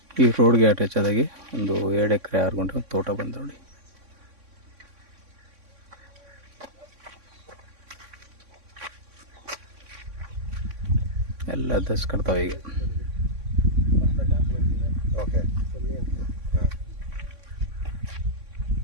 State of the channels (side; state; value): left; late; 3.6 ms